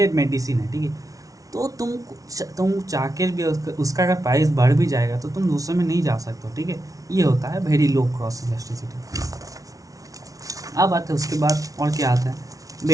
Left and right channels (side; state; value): left; late; 0.17 ms